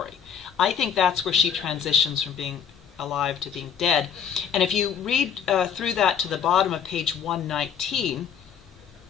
I think that's where she transitions from being alive to being dead. And if you read through that to the bottom of page 119,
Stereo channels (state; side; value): quieter; right; 7.8 dB